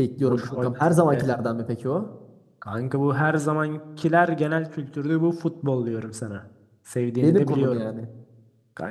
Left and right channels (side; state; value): both; identical; correlation 1.00